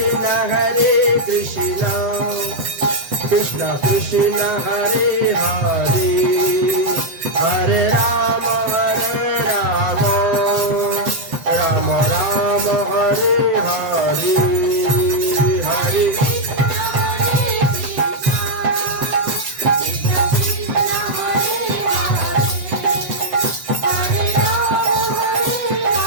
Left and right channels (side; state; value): left; late; 7.5 ms